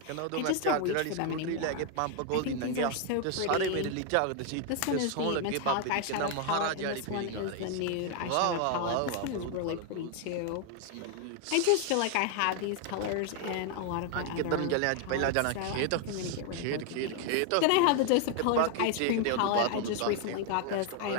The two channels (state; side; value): different; both; correlation 0.00